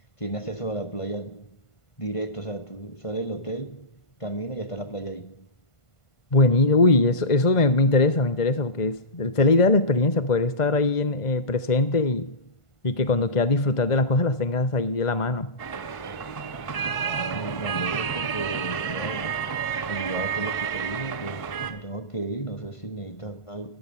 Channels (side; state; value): right; late; 1.5 ms